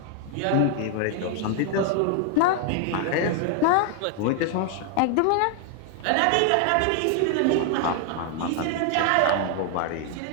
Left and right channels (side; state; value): both; different; correlation 0.00